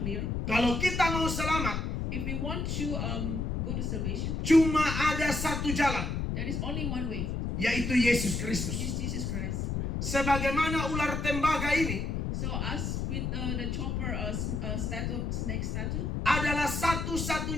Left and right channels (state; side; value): noise; left; rumble, 1 dB below the sound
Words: Kalau kita mau selamat, If we want to go to salvation, cuma ada satu jalan, there is only one way, yaitu Yesus which Kristus. is Jesus Christ. Sebagaimana ular tembaga ini So us with the chopper snake statue, adalah